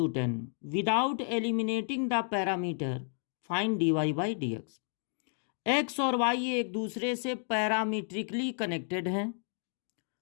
10 without eliminating the parameter find dy by dx। X और वाई एक दूसरे से पैरामीट्रिकली कनेक्टेड हैं।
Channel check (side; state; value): right; silent; 57 dB below the other